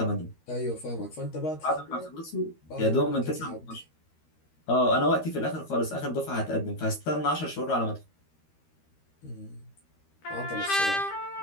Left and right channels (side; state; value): right; late; 13 ms